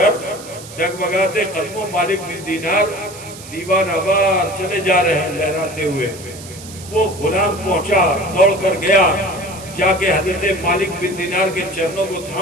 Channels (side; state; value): right; noise; hiss, 16 dB below the sound